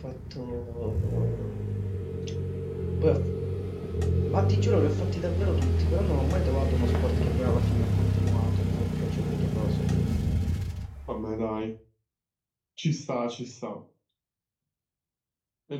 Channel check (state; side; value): identical; both; correlation 1.00